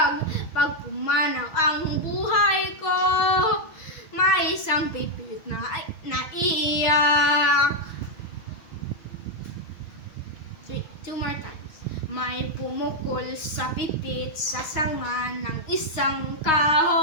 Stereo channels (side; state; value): right; late; 6.4 ms